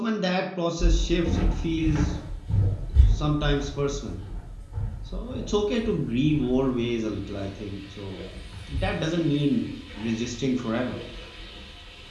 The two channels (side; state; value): both; identical; correlation 1.00